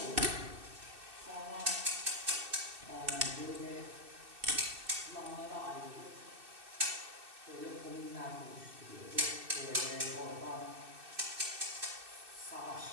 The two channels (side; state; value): left; late; 2.6 ms